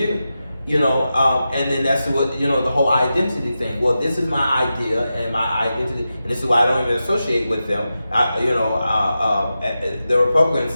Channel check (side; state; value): both; inverted; correlation -0.91